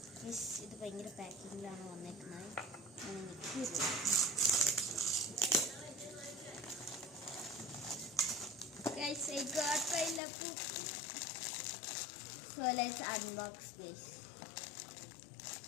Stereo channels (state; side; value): drops out; right; at 10.2 s